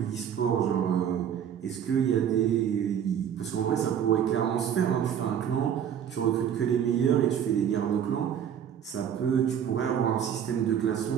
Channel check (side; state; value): left; quieter; 9.0 dB